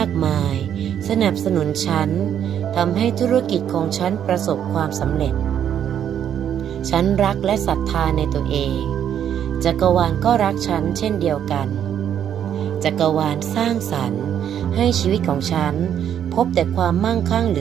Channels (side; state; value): left; quieter; 9.5 dB